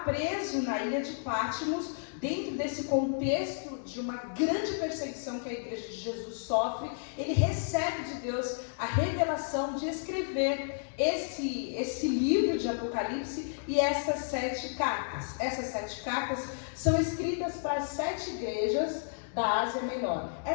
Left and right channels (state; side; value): silent; right; digital silence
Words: preso na ilha de Patmos, dentro desse contexto de uma grande perseguição que a igreja de Jesus sofre, ele recebe de Deus a revelação de escrever esse livro de Apocalipse e essas 7 cartas. Essas 7 cartas são escritas para as 7 igrejas da Ásia Menor.